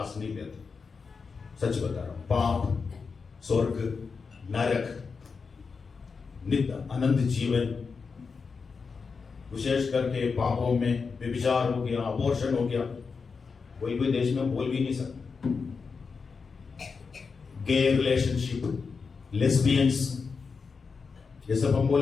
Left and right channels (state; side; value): quieter; right; 5.1 dB